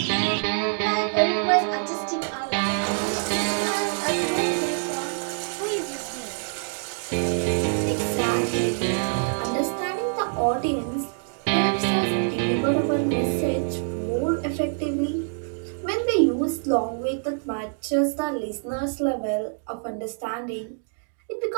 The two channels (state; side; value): silent; left; digital silence